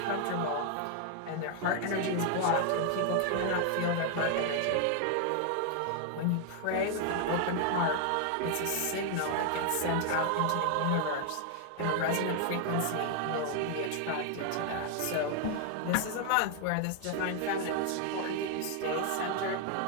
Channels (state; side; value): different; both; correlation 0.00